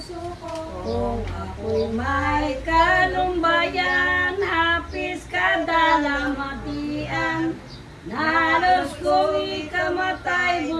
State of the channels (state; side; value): identical; both; correlation 1.00